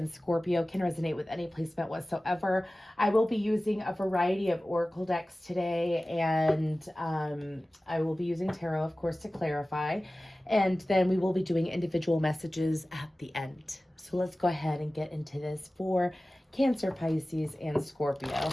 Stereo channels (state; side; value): normal; both; correlation 0.97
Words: Scorpio. Can resonate with any placement whatsoever. I will be using a variety of oracle decks today, and I will be using tarot, of course, to clarify. And then we will be doing individual messages at the end. So let's go ahead and get into this for Cancer, Pisces, and Scorpio.